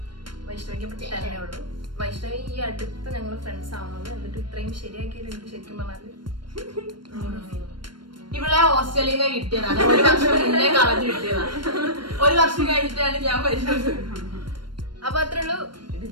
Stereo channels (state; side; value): late; left; 0.72 ms